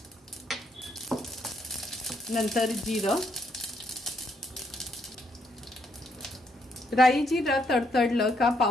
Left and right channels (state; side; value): normal; both; correlation 0.74